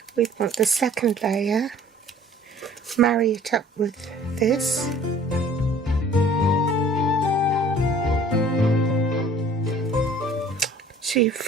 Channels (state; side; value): normal; both; correlation 0.52